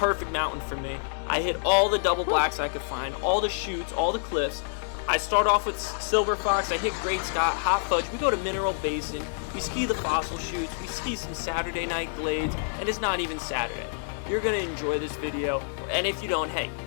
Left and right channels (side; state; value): right; silent; digital silence